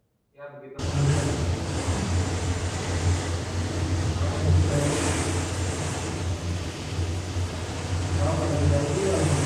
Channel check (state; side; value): identical; both; correlation 1.00